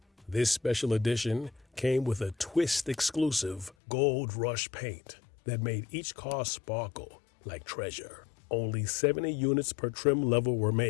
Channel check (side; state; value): right; drops out; at 3.8 s